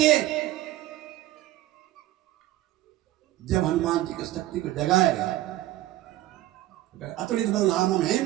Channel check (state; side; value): quieter; left; 15.4 dB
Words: जब हनुमान जी की शक्ति को जगाएगा, अतुलित बलधामम